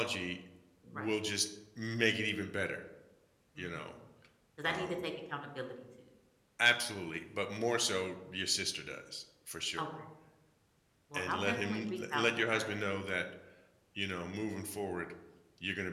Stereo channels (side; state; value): both; identical; correlation 1.00